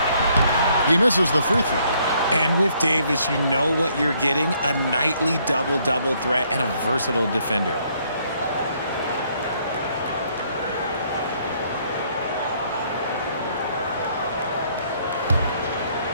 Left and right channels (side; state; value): both; inverted; correlation -0.68